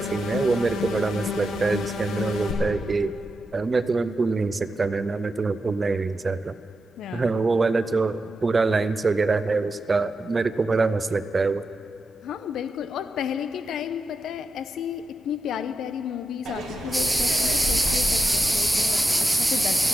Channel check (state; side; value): normal; both; correlation 0.88